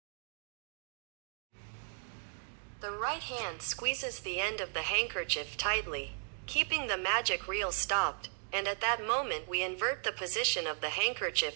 The right hand squeezes the end of the handkerchief tightly, keeping the magic reel stopped, and at that moment we invert the position of the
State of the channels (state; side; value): silent; left; 54 dB below the other